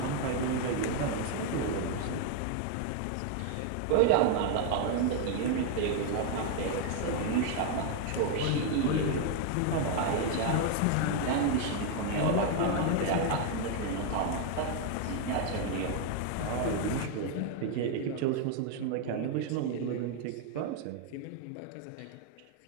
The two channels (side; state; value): both; different; correlation 0.01